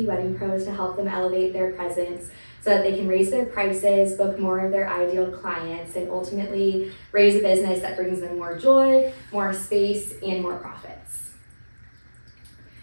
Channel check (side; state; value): both; inverted; correlation -1.00